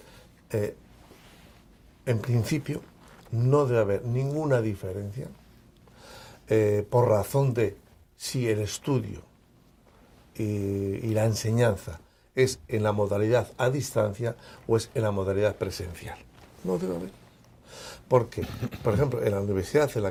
En principio, no debe haber ninguna diferencia por razón de si el estudio y la enseñanza es en la modalidad a distancia o es en la modalidad presencial. No debe haber. Porque, por ejemplo, en la universidad a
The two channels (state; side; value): identical; both; correlation 1.00